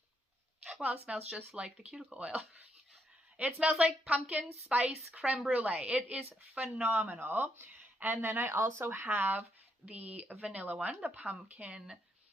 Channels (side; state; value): both; normal; correlation 0.77